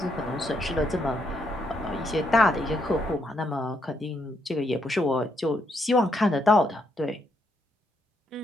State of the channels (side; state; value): both; normal; correlation 0.76